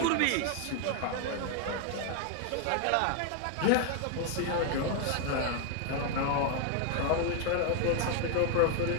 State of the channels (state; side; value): different; both; correlation 0.00